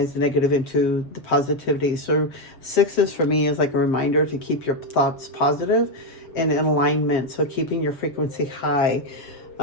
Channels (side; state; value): right; late; 7.4 ms